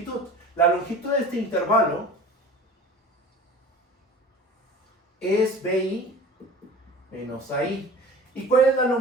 La longitud de este intervalo es BI menos AI. ¿Y cuál es la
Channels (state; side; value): normal; both; correlation 0.40